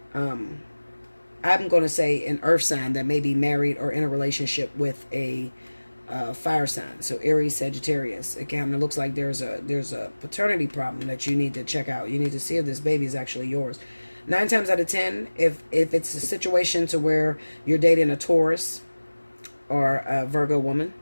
I'm going to say an earth sign that may be married or in a relationship with a fire sign. So Aries, Sagittarius. Again, it looks like there's a paternity problem that you need to check out. You need to see if this baby is actually yours. 9 times out of 10, if it's a situation to where you're dating a Taurus or a Virgo woman,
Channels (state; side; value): inverted; both; correlation -1.00